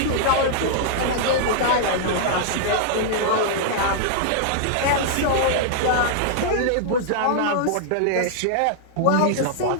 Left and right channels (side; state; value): both; different; correlation -0.01